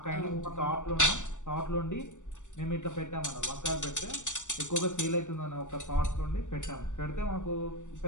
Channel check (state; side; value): late; right; 0.85 ms